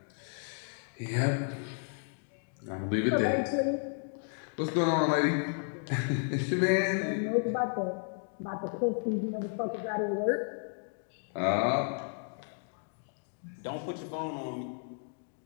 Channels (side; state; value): right; silent; 56 dB below the other